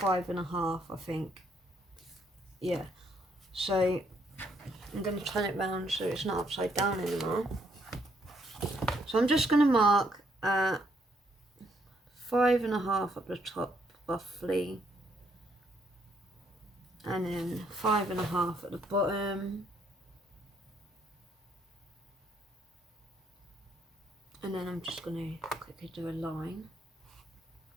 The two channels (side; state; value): both; normal; correlation 0.71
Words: I think. Yeah, so I'm going to turn it round so it's not upside down anymore. So I'm just going to mark 5.5 at the top roughly, and then 5.5 at the bottom, and then I'm just going to quickly do a line